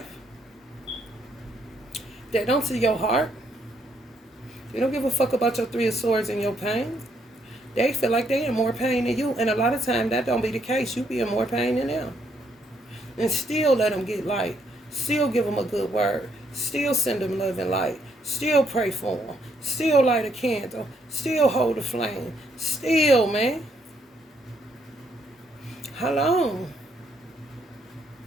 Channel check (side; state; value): both; normal; correlation 0.73